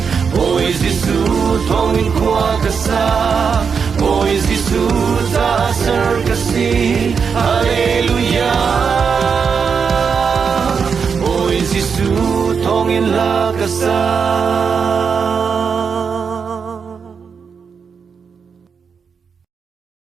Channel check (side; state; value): left; quieter; 6.1 dB